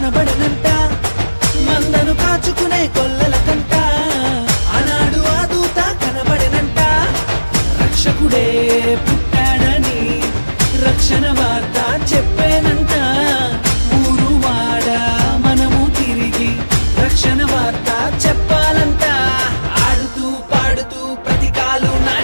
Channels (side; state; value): both; inverted; correlation -1.00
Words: మందను కాచుకునే గొల్లల కంట ఆనాడు ఆ దూత కనబడనంట రక్షకుడే పుట్టాడని రక్షణ వార్త చెప్పేనంట ఊరు వాడ మనము తిరిగి రక్షణ వార్త చెప్పాలంట ఆడుతూ పాడుతూ ప్రతికాలు